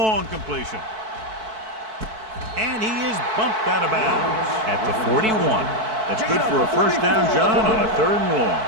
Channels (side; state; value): left; late; 4.6 ms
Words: completion. And he is bumped out of bounds at the 41. That's good for a first down, John, on a third and long.